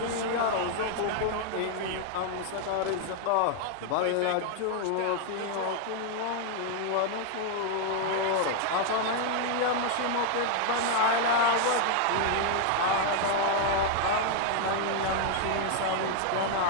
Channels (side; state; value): both; different; correlation 0.00